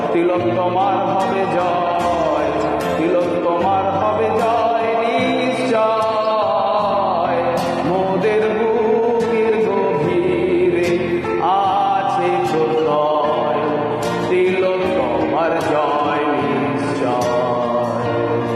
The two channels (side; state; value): both; identical; correlation 1.00